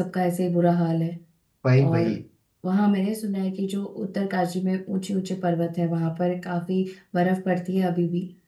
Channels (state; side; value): identical; both; correlation 1.00